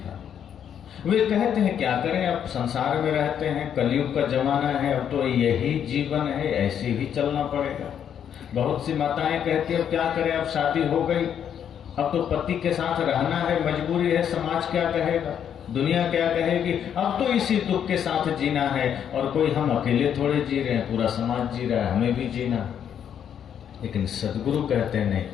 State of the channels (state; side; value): quieter; right; 8.8 dB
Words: वे कहते हैं क्या करें, अब संसार में रहते हैं, कलयुग का जमाना है, अब तो यही जीवन है, ऐसे ही चलना पड़ेगा। बहुत सी माताएं कहती है अब क्या करें, अब शादी हो गई, अब तो पति के साथ रहना है, मजबूरी है, समाज क्या कहेगा, दुनिया क्या कहेगी, अब तो इसी दुख के साथ जीना है। और कोई हम अकेले थोड़े जी रहे हैं, पूरा समाज जी रहा है, हमें भी जीना। लेकिन सदगुरु कहते हैं